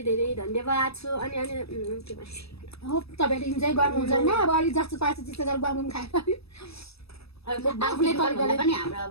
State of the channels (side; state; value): right; late; 0.78 ms